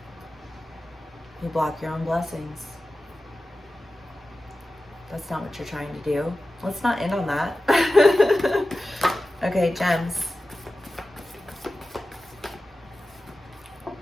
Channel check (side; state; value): both; normal; correlation 0.94